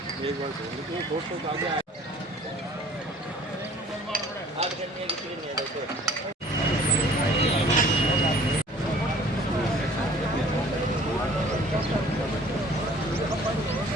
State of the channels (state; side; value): normal; both; correlation 0.52